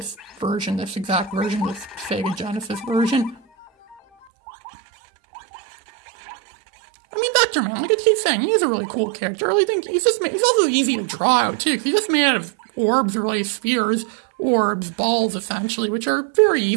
exact version, this Sega Genesis version. I mean, Vectorman, like I keep saying, he's a really cool character. I really think he's also easy to draw out, too, because he's just made out of orbs, or really spheres, orbs, balls, essentially, which are very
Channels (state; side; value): drops out; left; at 4.2 s